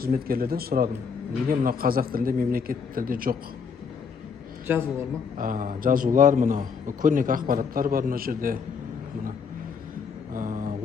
сұрадым. Неге мына қазақ тілінде, мемлекет тілде жоқ? Жазулар ма? Жазулар, мына көрнекі ақпараттар бар мына жерде.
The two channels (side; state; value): right; quieter; 5.9 dB